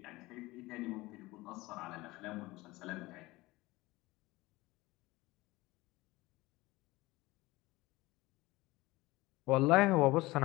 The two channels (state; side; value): quieter; right; 20.2 dB